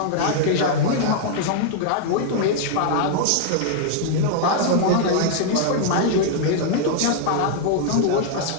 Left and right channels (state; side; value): different; both; correlation -0.01